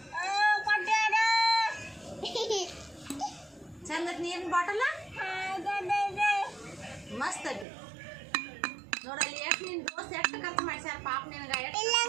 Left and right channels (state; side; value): drops out; left; at 7.7 s